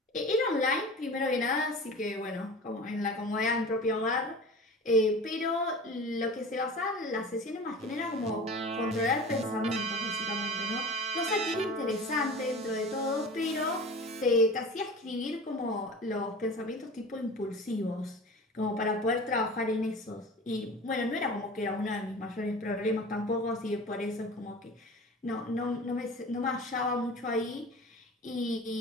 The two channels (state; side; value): normal; both; correlation 0.37